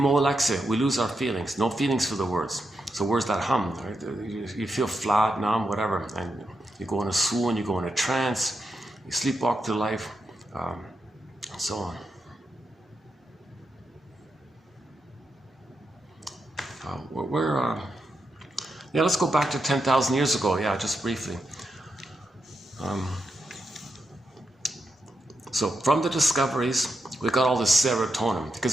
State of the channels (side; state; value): both; normal; correlation 0.85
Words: we lose our feelings. No feelings for the words. So where's that hum? Right? You feel flat, numb, whatever, and you go in a swoon, you go in a trance, you sleepwalk through life. So on. Yeah, let's go back to 10,000 years ago. Yeah, just briefly. So from the discoveries, we got all this serotonin,